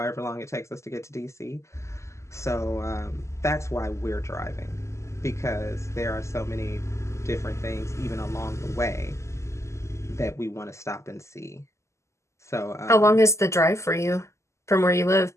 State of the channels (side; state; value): right; late; 0.13 ms